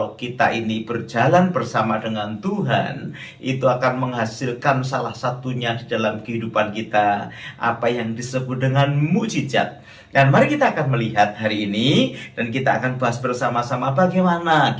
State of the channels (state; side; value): identical; both; correlation 1.00